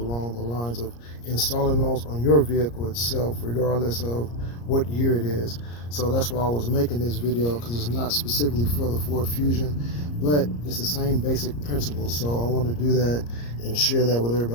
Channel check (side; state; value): right; late; 34 ms